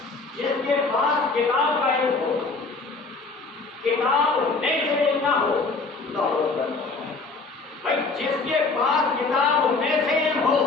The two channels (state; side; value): quieter; right; 3.9 dB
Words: جس کے پاس کتاب کا علم ہو، کتاب نہیں سے علم نہ ہو. بھائی جس کے پاس کتاب میں سے علم ہو